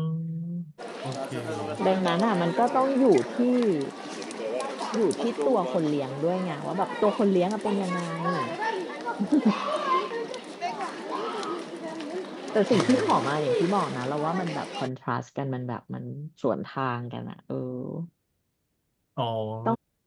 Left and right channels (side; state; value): both; identical; correlation 1.00